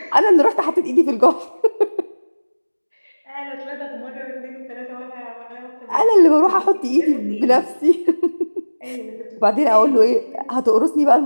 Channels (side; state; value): both; inverted; correlation -1.00